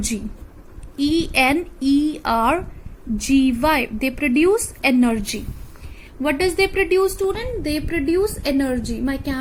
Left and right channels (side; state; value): both; identical; correlation 1.00